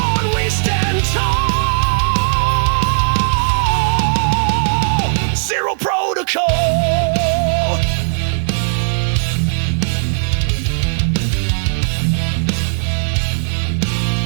we stand tall. Zero protocol.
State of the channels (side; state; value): left; silent; digital silence